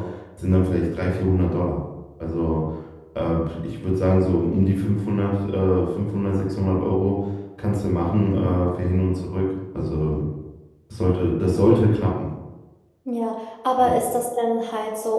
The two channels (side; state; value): both; identical; correlation 1.00